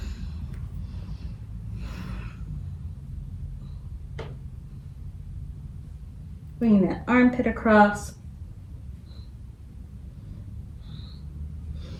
Bringing that armpit across.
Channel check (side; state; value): both; identical; correlation 1.00